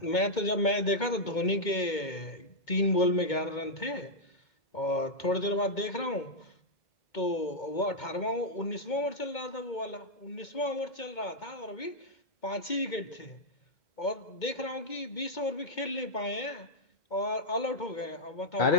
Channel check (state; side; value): late; right; 2.2 ms